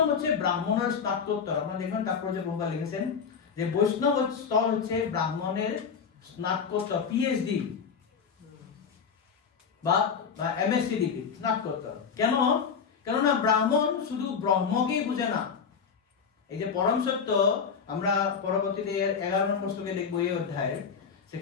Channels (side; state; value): right; quieter; 6.3 dB